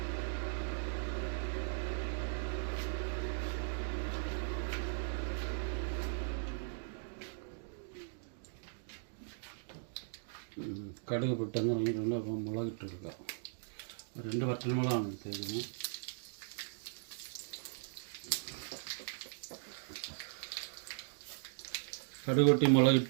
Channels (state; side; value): silent; left; digital silence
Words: കടുക് പെട്ടെന്ന് ഇറങ്ങിയിട്ടുണ്ട്. അപ്പോൾ മുളകിട്ടെടുക്കുക. 2 വറ്റൽമുളകാണ് എടുത്തേക്കുന്നത്. കടുക് പൊട്ടി